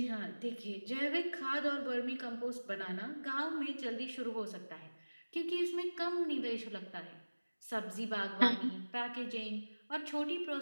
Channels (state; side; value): inverted; both; correlation -1.00